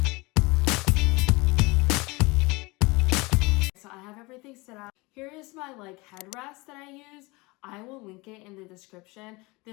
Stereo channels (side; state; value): right; quieter; 24.4 dB